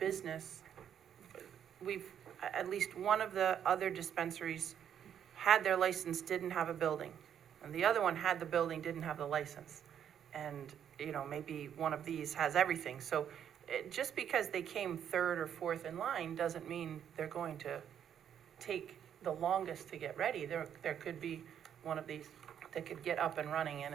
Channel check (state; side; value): quieter; left; 9.1 dB